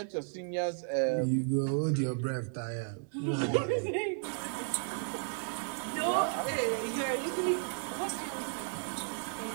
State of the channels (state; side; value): silent; left; 55 dB below the other